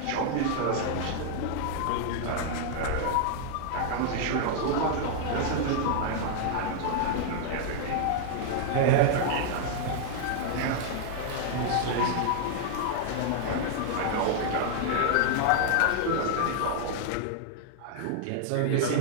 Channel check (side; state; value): both; different; correlation 0.00